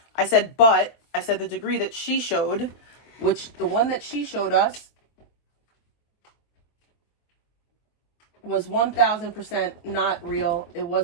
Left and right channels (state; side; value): late; right; 24 ms